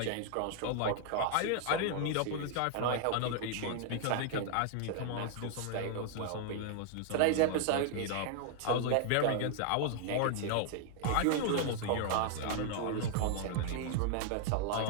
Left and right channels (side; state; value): both; different; correlation 0.00